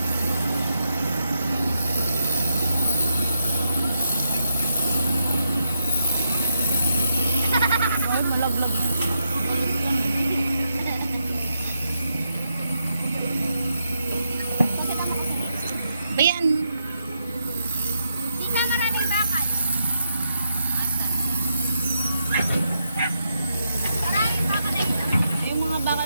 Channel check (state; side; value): inverted; both; correlation -0.82